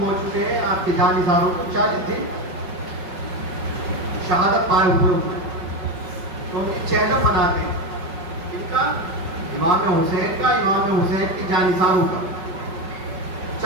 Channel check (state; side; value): late; left; 5.4 ms